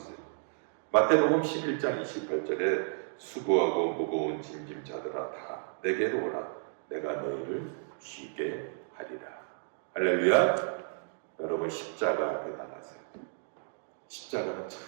마태복음 11장 28절에 수고하고 무거운 짐진 자들아 다 내게로 오라. 내가 너희를 쉬게 하리라. 할렐루야. 여러분 십자가 앞에 나가세요. 십자가는 참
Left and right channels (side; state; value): left; silent; digital silence